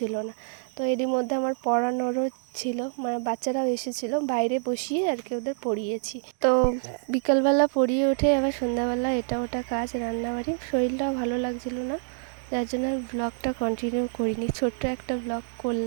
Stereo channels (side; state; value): left; silent; digital silence